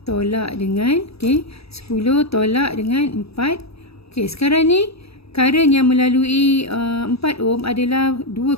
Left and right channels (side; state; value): right; late; 0.77 ms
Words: Tolak dengan 10 tolak dengan 4. Okey, sekarang ni current yang melalui 4 ohm adalah dua